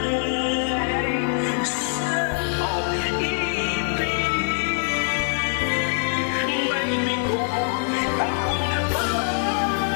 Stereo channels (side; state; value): right; silent; digital silence